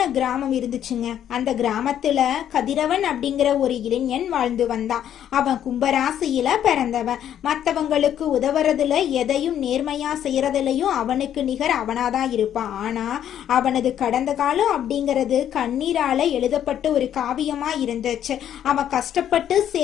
கிராமம் இருந்துச்சுங்க. அந்த கிராமத்துல கதிரவன் அப்படிங்கிற ஒரு இளைஞன் வாழ்ந்து வந்தான். அவன் கும்பராசியில பிறந்தவன். மற்றவங்களுக்கு உதவுறதுல எதையும் நேர்மையா செய்யறதுலயும் அவனுக்கு நிகர் அவனாதான் இருப்பான். ஆனா அவனது கடந்த காலம் அப்படிங்கிறது கண்ணீரால எழுதப்பட்ட ஒரு காவியமா இருந்துச்சு. அவன் கஷ்டப்பட்டு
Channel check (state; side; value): quieter; right; 10.2 dB